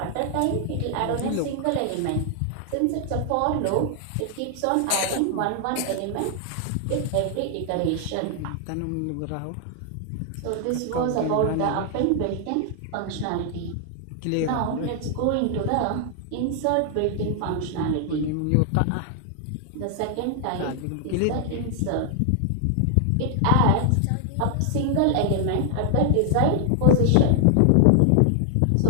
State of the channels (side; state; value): both; different; correlation 0.00